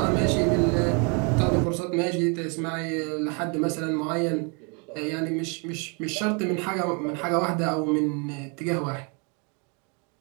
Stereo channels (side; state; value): left; quieter; 34.9 dB